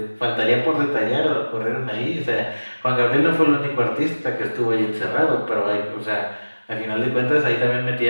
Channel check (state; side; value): inverted; both; correlation -1.00